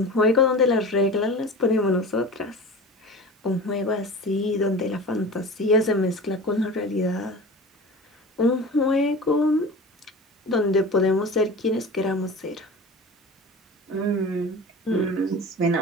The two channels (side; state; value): both; normal; correlation 0.35